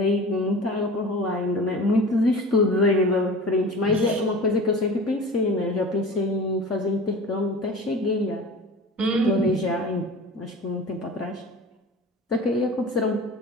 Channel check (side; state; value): both; normal; correlation 0.37